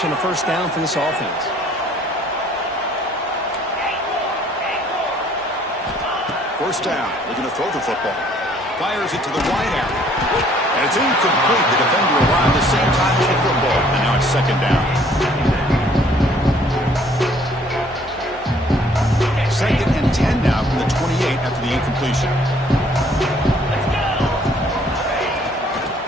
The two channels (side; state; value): both; normal; correlation 0.60